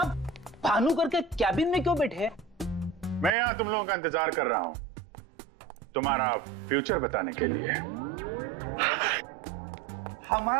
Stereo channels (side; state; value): left; drops out; at 3.3 s